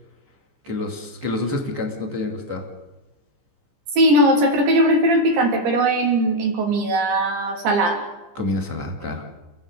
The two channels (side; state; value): left; late; 15 ms